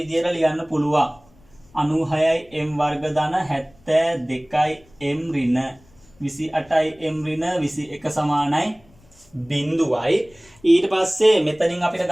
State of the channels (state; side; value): noise; left; rumble, 29 dB below the sound